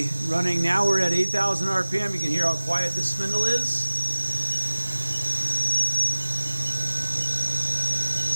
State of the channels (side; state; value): both; inverted; correlation -1.00